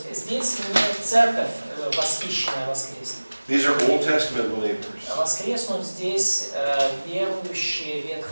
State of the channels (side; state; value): both; inverted; correlation -1.00